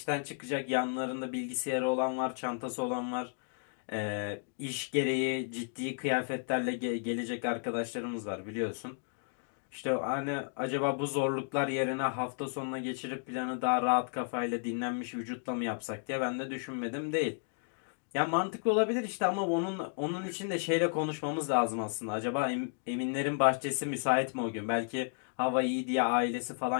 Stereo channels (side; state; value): right; silent; 55 dB below the other